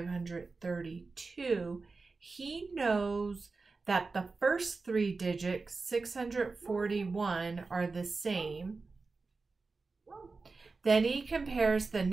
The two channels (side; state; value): left; quieter; 4.0 dB